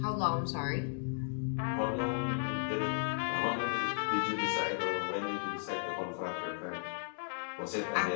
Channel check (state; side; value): silent; right; digital silence